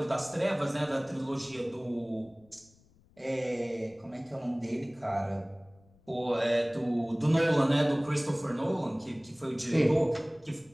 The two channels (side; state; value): left; noise; rumble, 30 dB below the sound